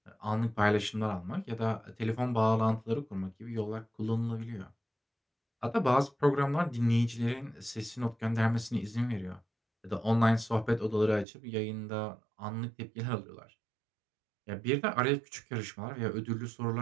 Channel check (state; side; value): drops out; left; at 11.2 s